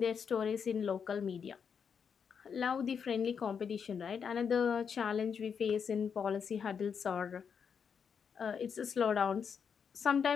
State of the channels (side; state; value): right; quieter; 6.8 dB